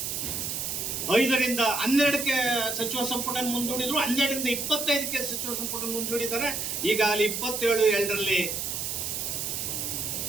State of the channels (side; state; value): right; noise; hiss, 3 dB below the sound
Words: 5ರಿಂದ 12ಕ್ಕೆ ಸಚಿವ ಸಂಪುಟ ಮುಂದೂಡಿದ್ರು, 12ರಿಂದ 25ಕ್ಕೆ ಸಚಿವ ಸಂಪುಟ ಮುಂದೂಡಿದ್ದಾರೆ. ಈಗ ಅಲ್ಲಿ 27